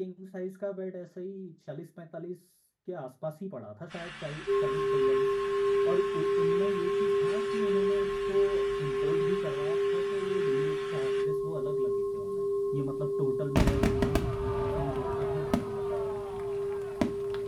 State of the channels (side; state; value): both; identical; correlation 1.00